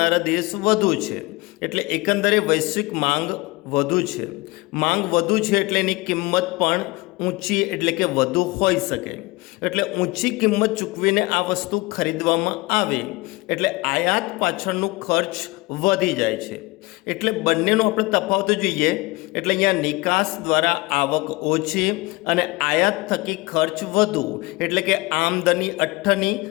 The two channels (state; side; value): quieter; right; 22.8 dB